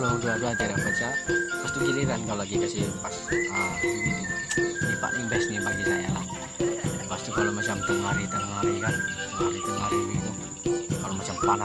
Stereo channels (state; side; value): identical; both; correlation 1.00